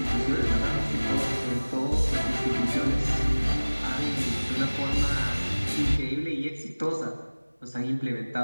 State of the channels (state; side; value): inverted; both; correlation -1.00